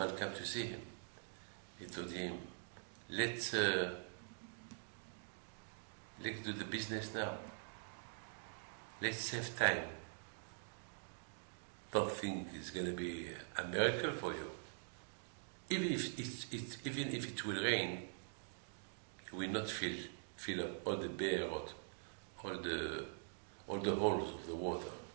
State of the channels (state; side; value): silent; left; digital silence